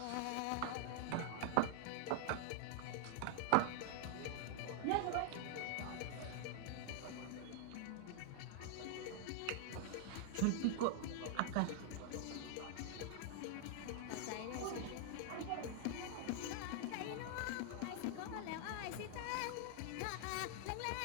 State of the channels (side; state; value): both; different; correlation 0.00